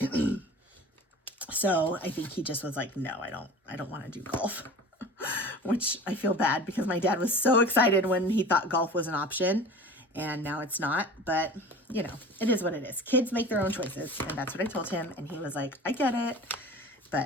So I think he just was like, no, I don't want to do golf. Which I feel bad, because my dad was so excited when he thought golf was an option, and now it's not. But you know, it is what it is. Kids make their own choices, and that's what I told him, and he was like, I get it.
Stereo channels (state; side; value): normal; both; correlation 0.39